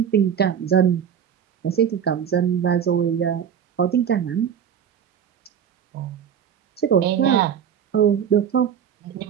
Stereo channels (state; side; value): quieter; left; 8.5 dB